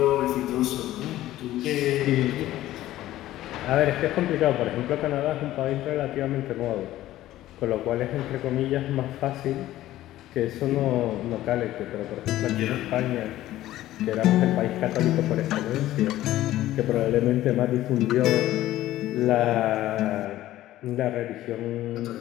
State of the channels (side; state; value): right; quieter; 14.6 dB